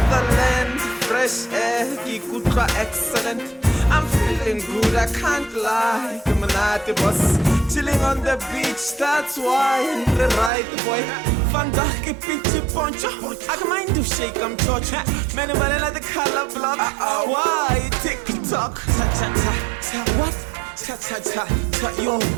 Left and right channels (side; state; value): left; drops out; at 10.5 s